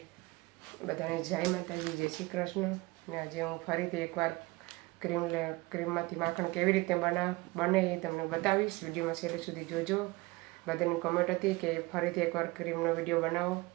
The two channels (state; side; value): quieter; left; 22.4 dB